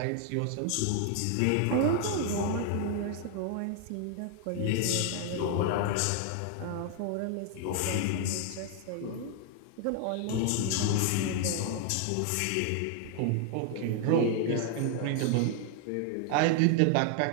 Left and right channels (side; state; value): both; different; correlation 0.00